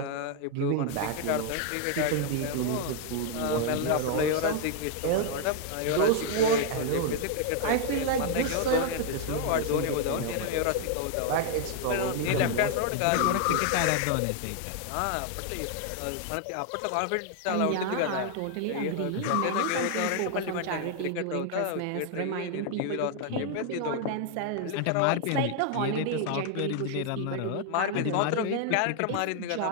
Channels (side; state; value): both; different; correlation 0.00